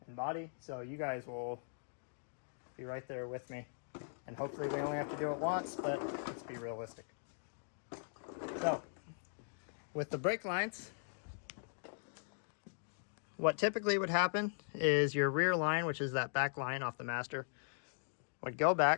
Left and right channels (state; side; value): silent; right; digital silence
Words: and body. So you guys will be right there with me. And hopefully we only have to do it once, but let's be realistic. So with the brake lines, what typically would happen is your rear line, which is that back line off the master, would go